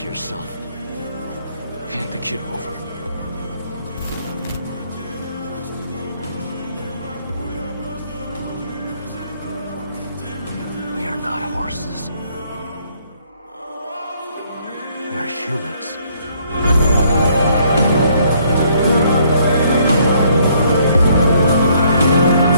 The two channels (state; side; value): inverted; both; correlation -0.66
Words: yourself. Hand the kid over. We are not horses. We are humans.